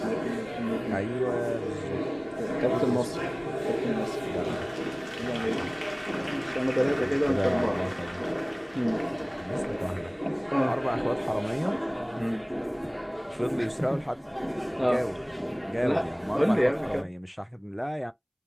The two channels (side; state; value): both; identical; correlation 1.00